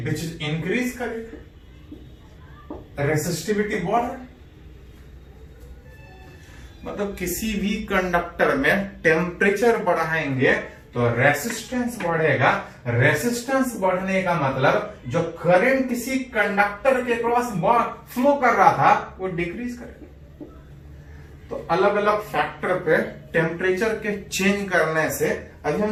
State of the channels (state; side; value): identical; both; correlation 1.00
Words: which is increase करेगा, रेसिस्टिविटी बढ़ रहा है। मतलब किसी भी कंडक्टर में टेम्परेचर बढ़ाएंगे तो रेसिस्टेंस बढ़ेगा, रेसिस्टेंस बढ़ने का मतलब जो करंट किसी कंडक्टर के क्रॉस फ्लो कर रहा था वो डिक्रीज करेगा। तो अलग अलग फैक्टर पे टेम्परेचर के चेंज करने से, अभी